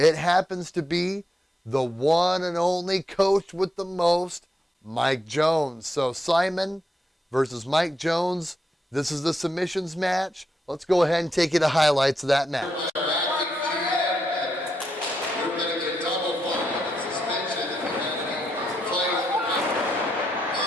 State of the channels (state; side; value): normal; both; correlation 0.83